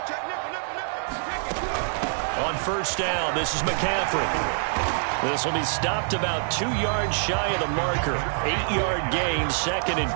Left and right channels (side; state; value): left; silent; 61 dB below the other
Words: On 1st down, this is McCaffrey. This will be stopped about 2 yards shy of the marker. 8-yard gain, 2nd and